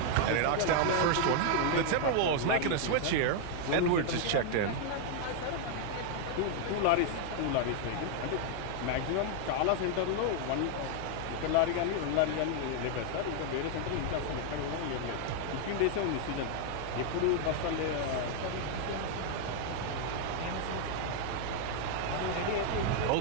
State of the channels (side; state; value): both; different; correlation 0.00